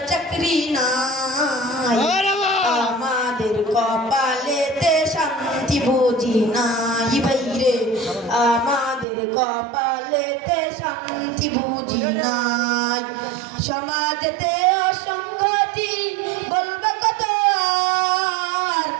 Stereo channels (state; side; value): drops out; left; at 9.1 s